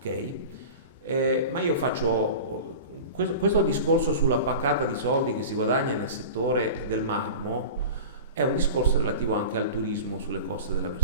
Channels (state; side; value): inverted; both; correlation -0.34